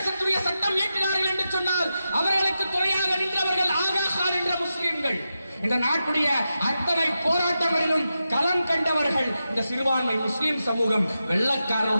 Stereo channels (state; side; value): inverted; both; correlation -0.90